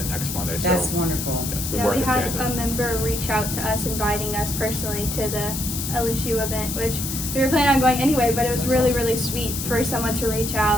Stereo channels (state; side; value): noise; left; hiss, 5 dB below the sound